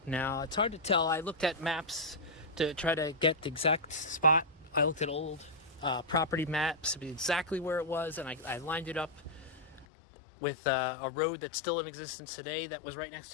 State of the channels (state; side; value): drops out; right; at 9.9 s